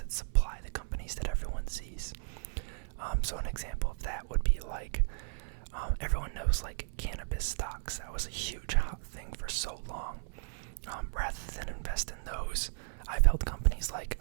supply the companies that everyone sees. So an example of that would be like everyone knows like cannabis stocks. That was a huge hot thing for so long. Rather than invest in those, I've held companies like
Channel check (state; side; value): silent; left; 55 dB below the other